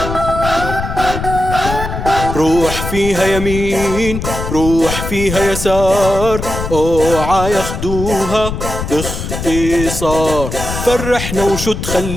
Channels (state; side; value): noise; left; rumble, 6 dB below the sound